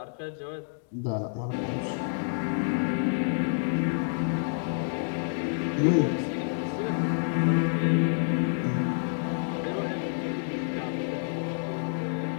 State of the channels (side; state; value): right; silent; digital silence